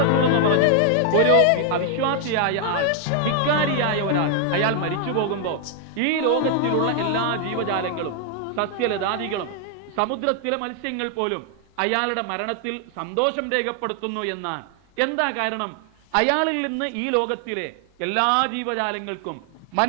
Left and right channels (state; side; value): different; both; correlation 0.00